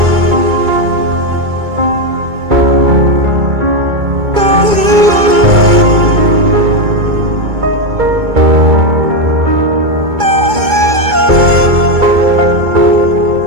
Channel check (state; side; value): late; left; 2.2 ms